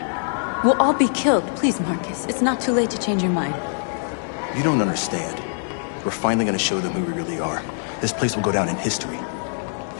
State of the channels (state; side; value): silent; right; digital silence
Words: We'll all be killed. Please, Marcus. It's not too late to change your mind. You don't understand. We're finally gonna show them who we really are. This place will go down in history.